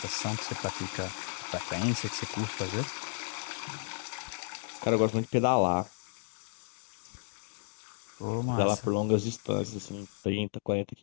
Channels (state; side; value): silent; right; digital silence